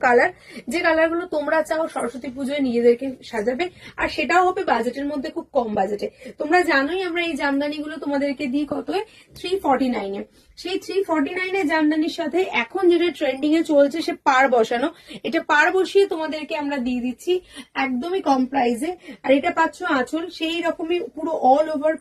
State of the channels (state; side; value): identical; both; correlation 1.00